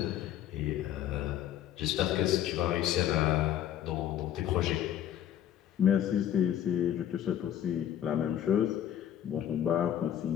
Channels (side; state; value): right; quieter; 10.7 dB